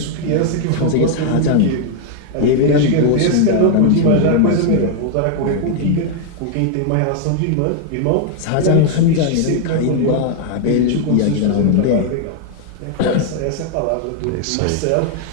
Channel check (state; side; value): different; both; correlation 0.00